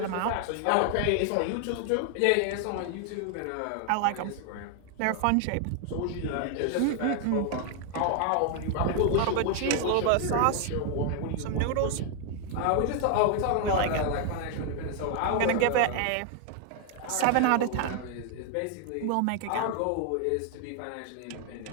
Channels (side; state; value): both; different; correlation 0.00